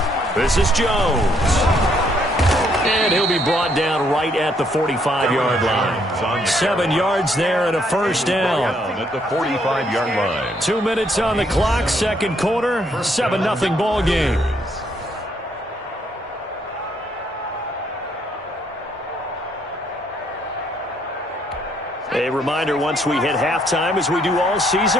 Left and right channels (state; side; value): normal; both; correlation 0.70